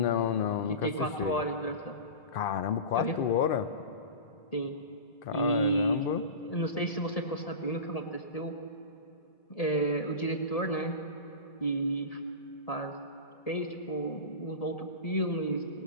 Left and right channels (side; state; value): right; late; 1.8 ms